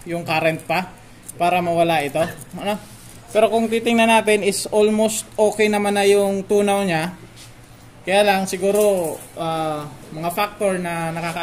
yung current pa para mawala ito, ano? Pero kung titingnan natin is almost okay naman na yung tunaw niya. Kaya lang siguro mga factor na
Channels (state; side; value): identical; both; correlation 1.00